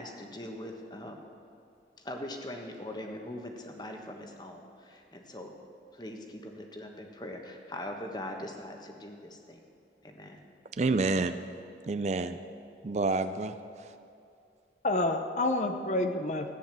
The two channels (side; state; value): both; normal; correlation 0.30